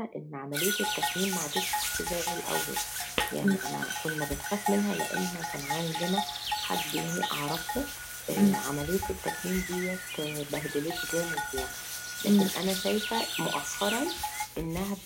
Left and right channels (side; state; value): both; identical; correlation 1.00